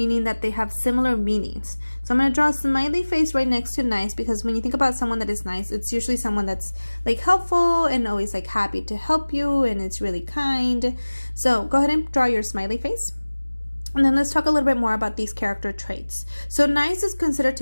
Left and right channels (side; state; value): both; inverted; correlation -1.00